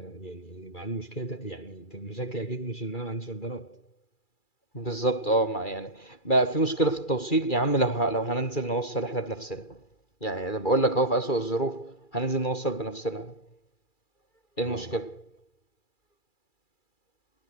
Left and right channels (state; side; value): late; right; 2.3 ms